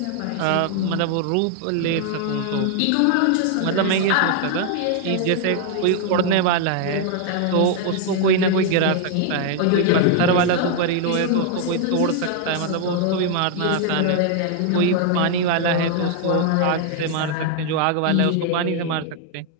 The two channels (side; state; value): both; different; correlation 0.00